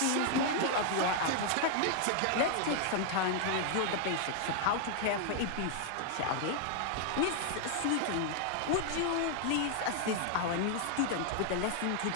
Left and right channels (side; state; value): both; different; correlation 0.00